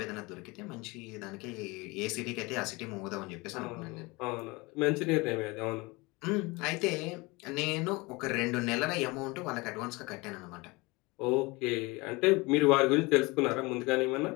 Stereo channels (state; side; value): quieter; right; 24.6 dB